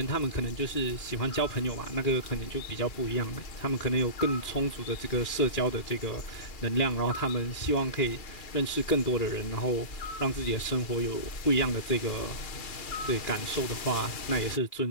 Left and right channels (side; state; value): right; late; 2.4 ms